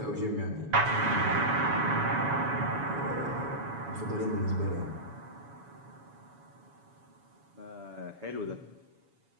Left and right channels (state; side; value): late; left; 7.1 ms